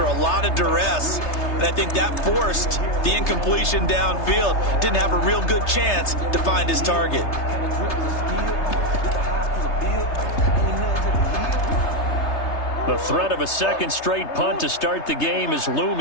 a lot of duress. And I think that forced the incompletion downfield. Didn't have a real good chance to find his target. The threat of a second straight punt to start the game is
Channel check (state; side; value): late; right; 3.3 ms